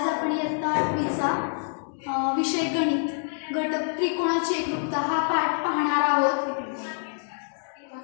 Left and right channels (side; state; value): right; silent; digital silence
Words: आपण इयत्ता 8वीचा विषय गणित घटक त्रिकोणाची एकरूपता हा पाठ पाहणार आहोत।